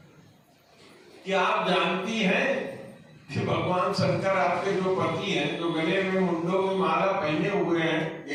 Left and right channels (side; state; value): both; identical; correlation 1.00